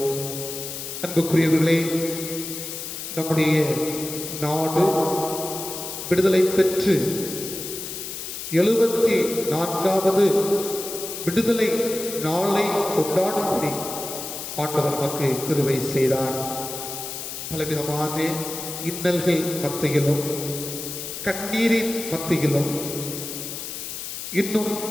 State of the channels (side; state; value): left; noise; hiss, 7 dB below the sound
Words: அன்புக்குரியவர்களே, நம்முடைய நாடு விடுதலை பெற்று 74வது விடுதலை நாளை கொண்டாடும்படி ஆண்டவர் நமக்கு கிருபை செய்தார். பலவிதமான இன்னல்கள் மத்தியிலும் கண்ணீரின் மத்தியிலும் இன்னும்